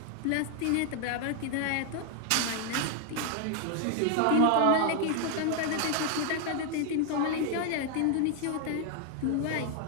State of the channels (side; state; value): both; different; correlation 0.00